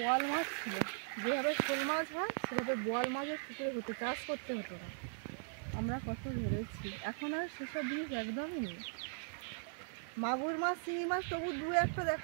মাছ ছিল। যেভাবে শোল মাছ হয় সেভাবে বোয়াল মাছের পুকুরে হতো, চাষ করতে হতো না। আমরা কত ধরেছি, এখন আর সেসব জিনিস একদমই নেই। মাগুর মাছ, চিংড়ি মাছ তবু দু একটা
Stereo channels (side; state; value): left; silent; digital silence